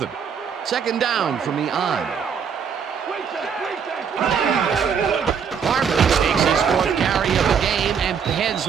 Second down from the on. Barber takes his 4th carry of the game and heads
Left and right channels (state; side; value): quieter; left; 6.9 dB